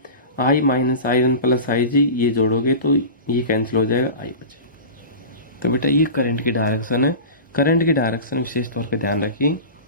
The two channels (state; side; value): inverted; both; correlation -0.31